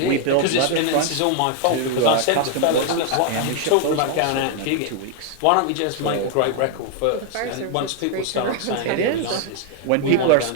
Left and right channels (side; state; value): both; different; correlation 0.00